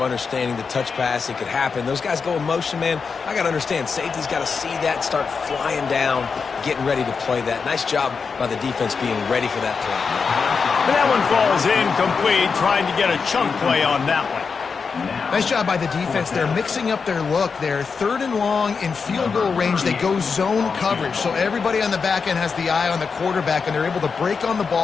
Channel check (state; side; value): quieter; right; 5.4 dB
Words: understanding the touch pass. It could happen. Those guys go in motion, man. I got to understand, safety's got to see that, start flying down, getting ready to play that. Nice job by the defense being ready for that play. And that one falls incomplete, trying to get a chunk play on that one. Nice job by the defense. They're mixing up their look. They're 3rd and long in field goal range. They go zone coverage. So everybody on the back end has the eye on the quarterback, and they're able to break on the